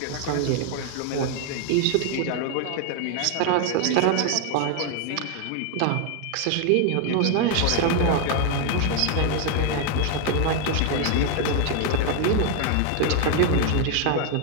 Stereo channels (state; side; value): different; both; correlation 0.00